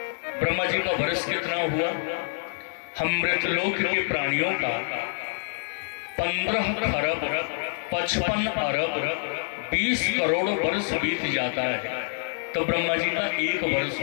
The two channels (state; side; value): silent; right; digital silence